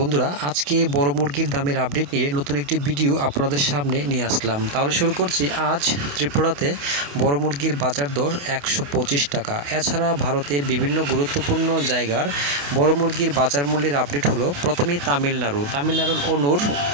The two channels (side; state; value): left; late; 28 ms